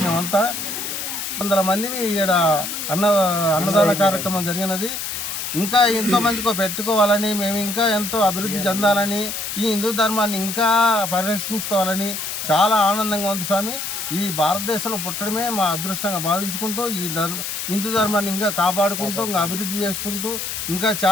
మేమంతా. 100 మందిని ఇక్కడ అన్నదాన కార్యక్రమం జరిగినది. ఇంకా ఎంతోమందికి పెట్టుకోవాలని, మేము ఇంకా ఎంతో అభివృద్ధి చెందాలని, ఈ హిందూ ధర్మాన్ని ఇంకా పరిరక్షించుకోవాలని చాలా ఆనందంగా ఉంది స్వామి. ఈ భారతదేశంలో పుట్టడమే మా అదృష్టంగా భావించుకుంటూ ఈ హిందూ ధర్మాన్ని ఇంకా కాపాడుకుంటూ, ఇంకా అభివృద్ధి చేసుకుంటూ ఇంకా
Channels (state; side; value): noise; left; hiss, 4 dB below the sound